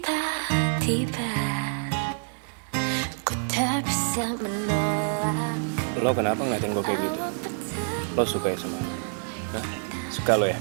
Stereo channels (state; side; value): silent; left; digital silence